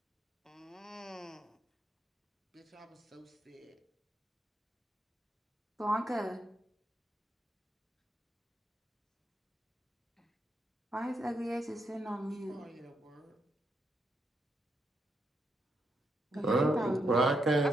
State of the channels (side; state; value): both; normal; correlation 0.80